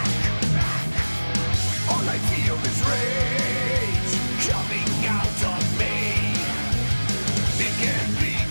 All I feel is rage coming out of me. It can't be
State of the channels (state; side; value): inverted; both; correlation -1.00